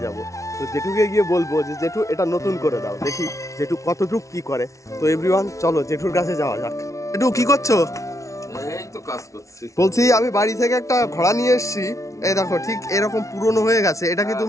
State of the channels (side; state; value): right; late; 0.15 ms